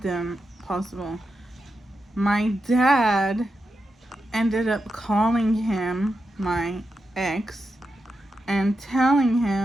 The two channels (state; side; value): normal; both; correlation 0.87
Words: than possible. My dad ended up calling him, my ex, and telling